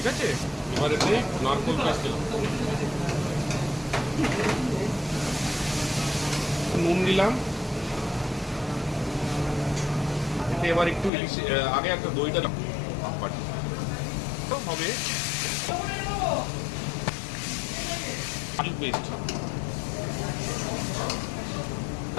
আছে। এবার এতে নারকোল পেস্ট দিলাম, নুন দিলাম। এতে এবার একটু ইলিশ আগে একটা দইটা হবে, আলু পেস্ট,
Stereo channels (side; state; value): right; drops out; at 11.1 s